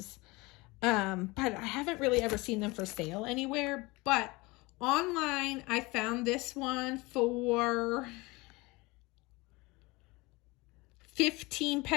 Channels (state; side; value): quieter; right; 23.6 dB